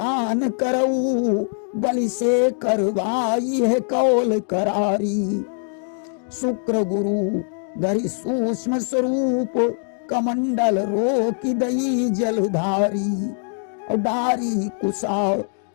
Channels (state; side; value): silent; right; digital silence